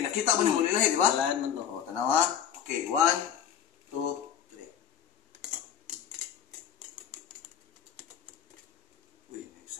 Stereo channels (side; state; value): right; quieter; 8.8 dB